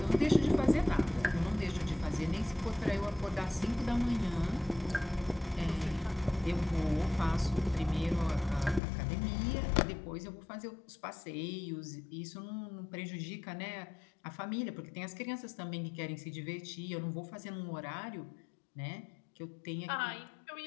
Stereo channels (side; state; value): right; drops out; at 8.8 s